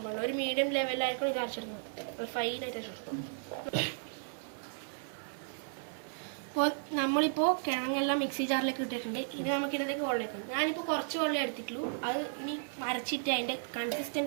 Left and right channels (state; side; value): silent; left; digital silence